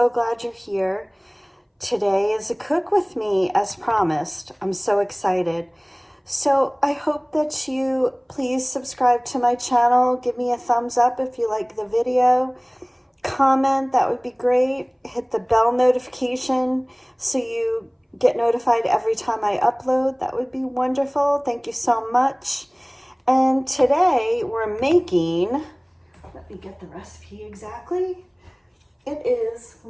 glad you're here. Today is a cook with me as promised. I'm so excited. So I hope that you please subscribe to my channel. Give me a thumbs up if you like the video. Comment, that would be great. Hit the bell notification so you get notified every time I upload. That would be wonderful. Thank you so much. And today we're making, let me get the recipe exactly. It is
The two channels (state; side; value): identical; both; correlation 1.00